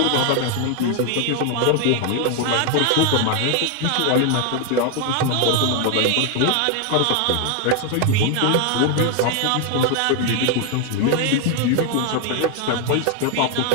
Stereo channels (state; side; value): different; both; correlation 0.01